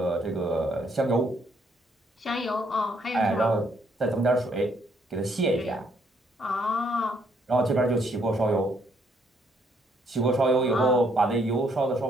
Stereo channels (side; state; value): both; normal; correlation 0.70